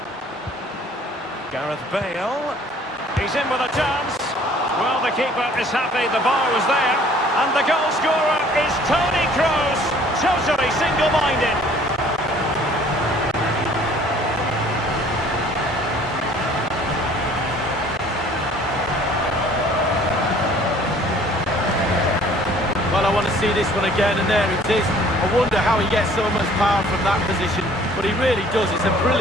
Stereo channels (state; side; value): normal; both; correlation 0.55